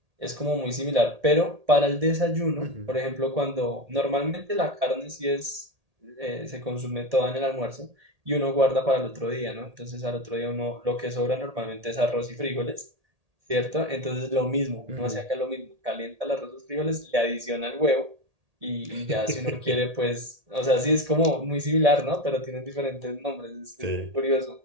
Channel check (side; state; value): left; late; 1.8 ms